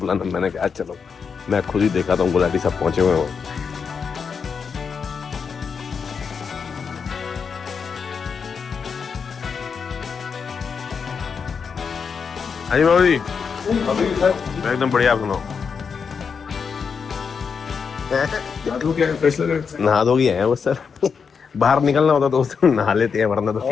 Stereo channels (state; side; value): quieter; right; 6.0 dB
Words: मैंने कहा चलो मैं खुद ही देखा था, गुलाटी सब पहुंचे हुए हो। हाँ जी बाबू जी, एकदम बढ़िया, आप सुनाओ। नहा धो गया है वो सर, बाहर निकलना होता तो उस दिन नहा लेते हैं, वरना तो